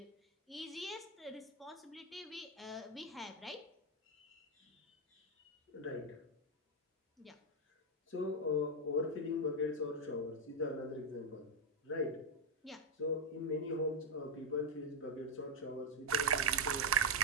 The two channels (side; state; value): both; normal; correlation 0.02